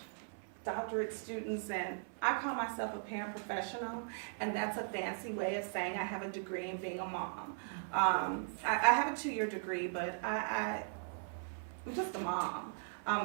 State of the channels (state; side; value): silent; left; 52 dB below the other